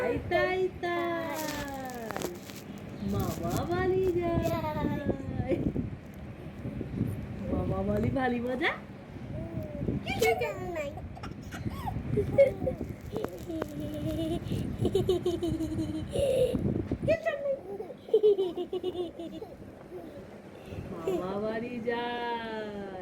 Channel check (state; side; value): identical; both; correlation 1.00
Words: তাই তাই মামা বাড়ি যায়। মামা বাড়ি ভারী মজা। মামা বাড়ি